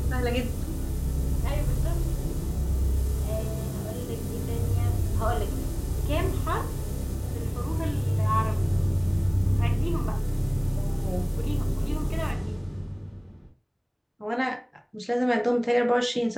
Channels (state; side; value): identical; both; correlation 1.00